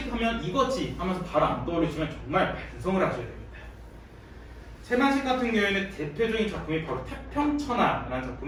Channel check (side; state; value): both; identical; correlation 1.00